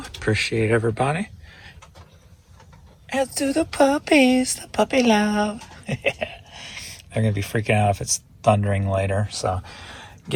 Appreciate everybody. As do the puppies, the puppy love. They're going to be freaking out if it's thundering later, so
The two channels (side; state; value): both; identical; correlation 1.00